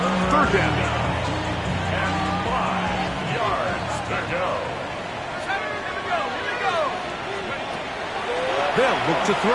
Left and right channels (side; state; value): both; identical; correlation 1.00